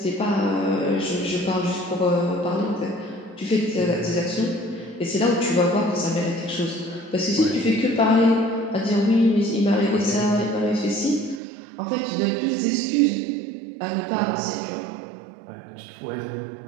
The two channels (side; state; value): left; drops out; at 11.4 s